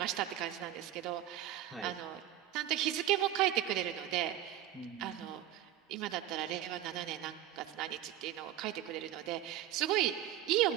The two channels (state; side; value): quieter; left; 12.3 dB